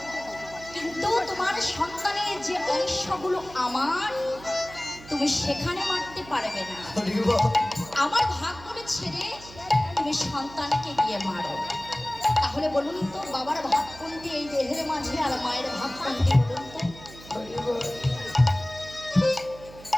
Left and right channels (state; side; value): noise; right; hum, 18 dB below the sound